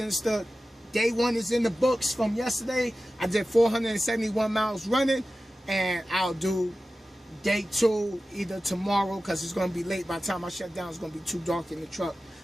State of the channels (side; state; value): both; normal; correlation 0.95